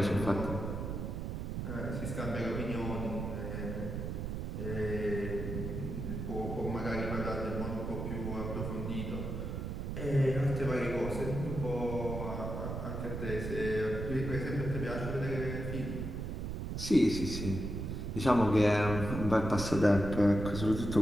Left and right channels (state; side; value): noise; right; rumble, 4 dB below the sound